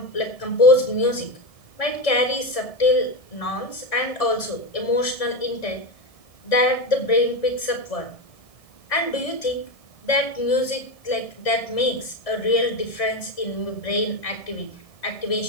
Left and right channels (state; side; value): late; right; 1.6 ms